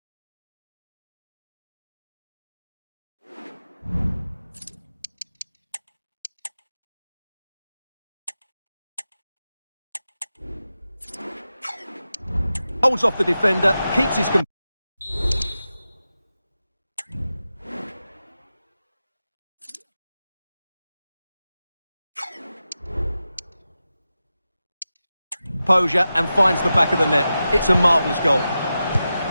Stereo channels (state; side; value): inverted; both; correlation -0.92